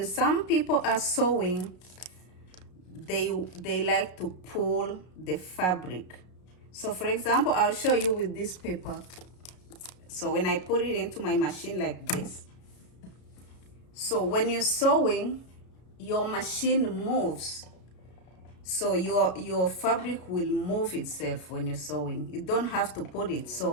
some people are sewing, they like to pull the fabric. So for example, I'll show you with this paper. So when I put it into my machine like this, so when you're sewing, your machine moves. So your fabric will move itself when you're sewing. You don't have to put it.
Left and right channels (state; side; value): late; right; 33 ms